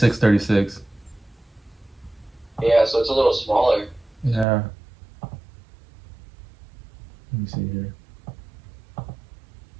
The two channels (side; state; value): left; drops out; at 4.5 s